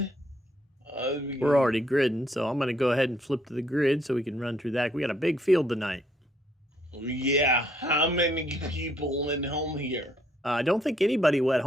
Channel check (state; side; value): normal; both; correlation 0.69